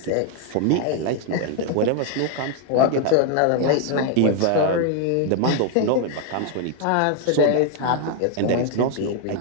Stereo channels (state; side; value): different; both; correlation 0.00